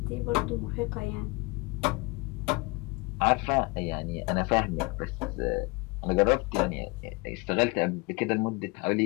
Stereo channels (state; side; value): quieter; right; 27.1 dB